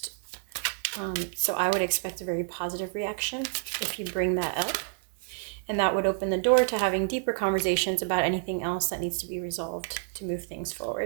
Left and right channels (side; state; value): left; silent; 59 dB below the other